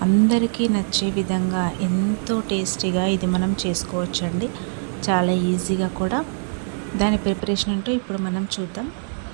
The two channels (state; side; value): silent; left; digital silence